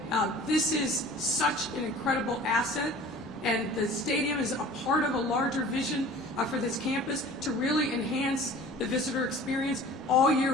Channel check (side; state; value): both; normal; correlation 0.44